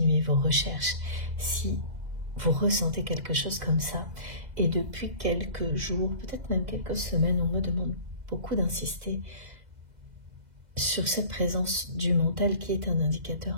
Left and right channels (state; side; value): late; left; 2.0 ms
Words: vos recherches si vous ressentez quelque chose comme ça. Et depuis quelques jours, peut-être même quelques semaines, on me demande beaucoup d'insister sur cette présence du mental qui est un